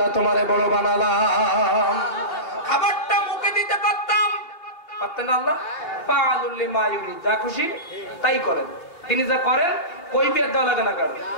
তোমারে বড় বানালাম। খাবারটা মুখে দিতে পারতাম, পারতেন না আল্লাহ? পালুল লিমা ইউরিদ, যা খুশি তাই করেন। তিনি যা করেন কৈফিয়ত দেওয়া লাগে না? কারণ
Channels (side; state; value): right; late; 3.0 ms